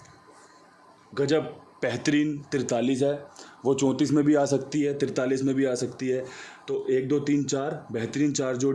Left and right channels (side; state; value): both; identical; correlation 1.00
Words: गजब बेहतरीन 43 है। वो 34 में भी आ सकती है, 43 में भी आ सकती है। तो 1 2 3 4 बेहतरीन 4